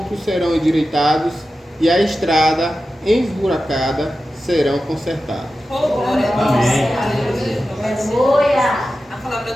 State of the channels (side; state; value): both; normal; correlation 0.93